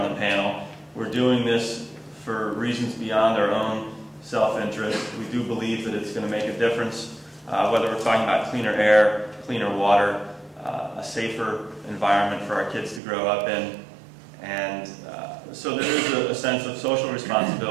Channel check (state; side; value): drops out; left; at 13.0 s